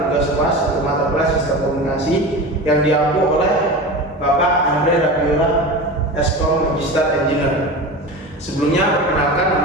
kelas atau mata kelas sistem komunikasi yang diampu oleh Bapak Andre Rabiola, Eskom Magister Engineer. Sebelumnya perkenalkan,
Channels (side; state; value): both; normal; correlation 0.29